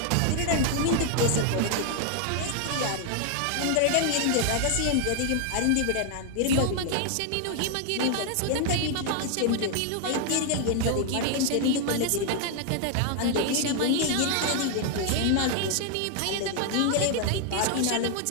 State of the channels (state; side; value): different; both; correlation 0.00